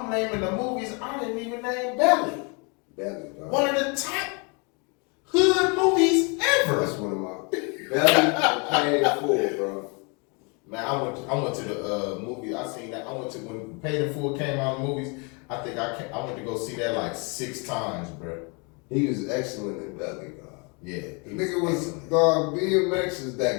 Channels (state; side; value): quieter; right; 32.8 dB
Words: naming the movies I didn't even name Belly. Belly, dog. One of the top hood movies ever. That's one of my Belly and Paid in Full, bro. Man, I went to the movie. I seen that. I went to when Paid in Full came out in movies. I think I went to go see that like 6 times, bro. He was excellent in Belly, dog. Yeah, the nigga was dog. DMX is